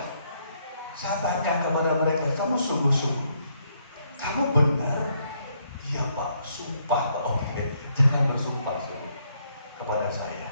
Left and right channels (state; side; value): inverted; both; correlation -0.72